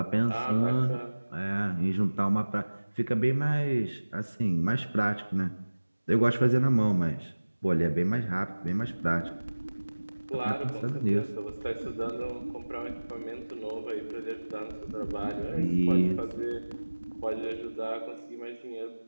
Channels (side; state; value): both; inverted; correlation -1.00